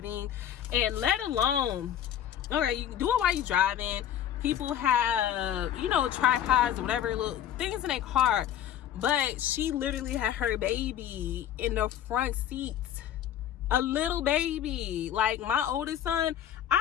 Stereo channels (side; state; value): right; quieter; 10.5 dB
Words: and let alone, okay, you can do it while you're driving. People have, you know, tripods or whatever little things in their car, but she literally had her baby in the front seat. A little baby. Like, my oldest son,